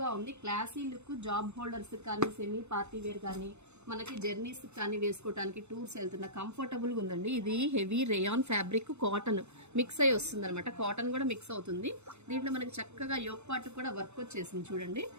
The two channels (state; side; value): late; left; 0.81 ms